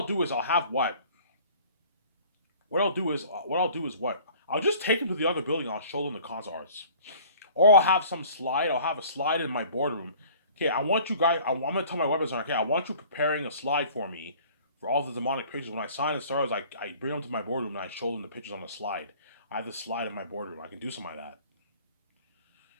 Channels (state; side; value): inverted; both; correlation -0.50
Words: do is I'll have what? What I'll do is what? I'll just take them to the other building. I'll show them the concept arts, or I'll have some slide. I'll have a slide in my boardroom. Okay, I want you guys. I'm gonna tell my web designer. Okay, I want you preparing a slide for me for all the demonic pictures. When I sign the stars, I bring them to my boardroom and I show them the pictures on the slide. I have the slide in my boardroom. I can do something like that.